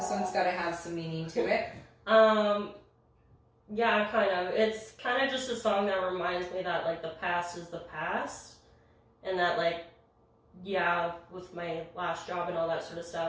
one's got to have some meaning to it. Yeah, kind of. It's kind of just a song that reminds me that, like, the past is the past. And that, like, yeah, with my last job and all that sort of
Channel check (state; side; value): identical; both; correlation 1.00